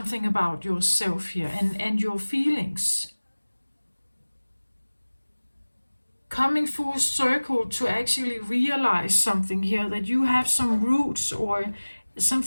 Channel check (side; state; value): both; inverted; correlation -1.00